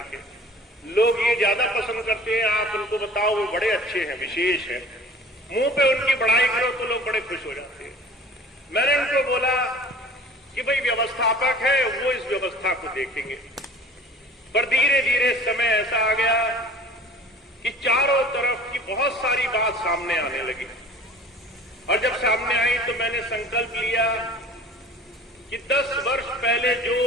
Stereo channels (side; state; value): both; normal; correlation 0.45